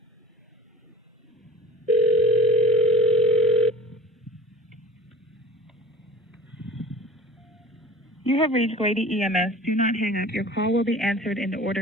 You have reached Grady EMS. Do not hang up. Your call will be answered in the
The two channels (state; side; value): normal; both; correlation 0.40